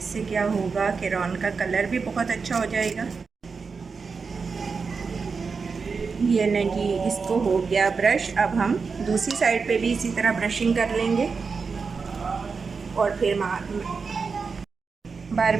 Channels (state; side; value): quieter; left; 5.0 dB